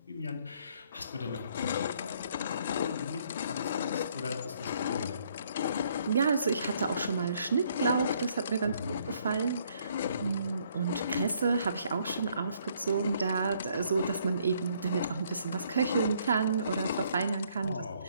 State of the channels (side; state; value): both; inverted; correlation -0.66